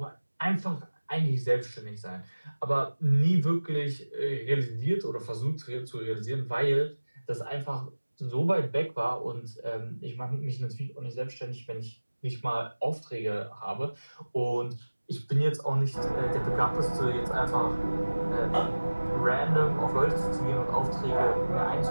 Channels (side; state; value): both; inverted; correlation -1.00